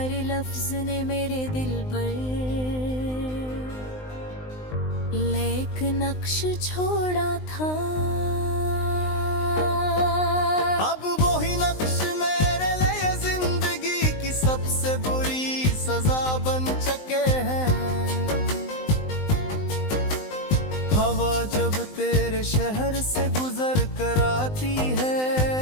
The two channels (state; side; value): late; right; 19 ms